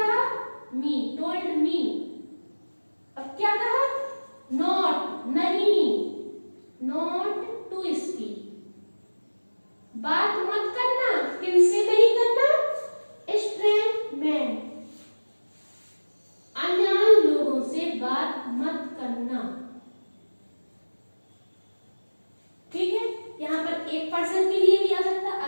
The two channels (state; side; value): inverted; both; correlation -1.00